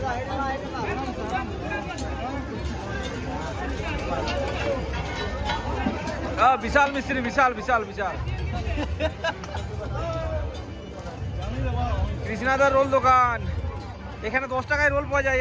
বিশাল মিস্ত্রি, বিশাল বিশাল বিশাল। কৃষ্ণাদার রোল দোকান। এখানে 10 টাকায় রোল পাওয়া যায়,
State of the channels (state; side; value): identical; both; correlation 1.00